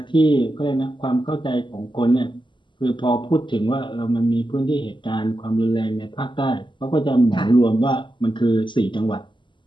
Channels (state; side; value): late; right; 0.23 ms